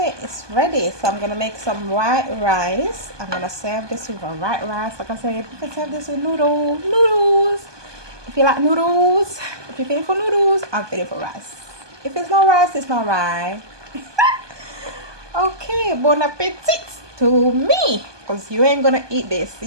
it's ready. So I'm gonna make some white rice. I'm gonna serve this with a white rice. Like I said, you can serve this with noodles. If you like noodles, if you're feeling for noodles, I'm feeling for rice. If it's not rice, it's not right. Okay, bon appetit to me. Because you ain't gonna eat this.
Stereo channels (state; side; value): late; left; 1.2 ms